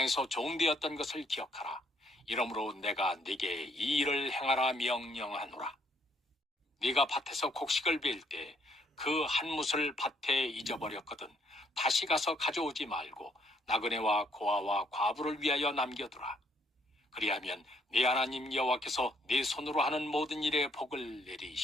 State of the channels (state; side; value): normal; both; correlation 0.69